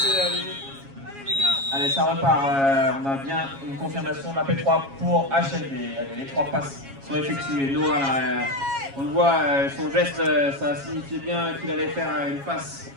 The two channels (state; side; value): late; left; 7.3 ms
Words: les yeux. Allez, ça repart. On a bien une confirmation de la P3 pour HLB. Allez, les 3 passes sont effectuées. Noah, on le voit, son geste, ça signifiait bien qu'il allait faire une passe